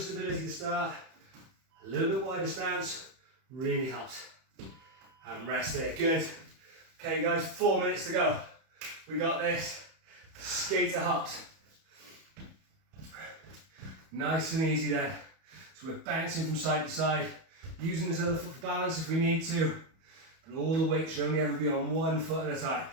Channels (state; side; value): late; left; 31 ms